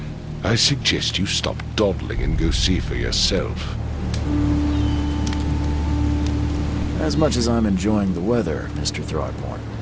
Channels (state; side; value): identical; both; correlation 1.00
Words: I suggest you stop dawdling and go see for yourself. As much as I'm enjoying the weather, Mr. Throgmorton,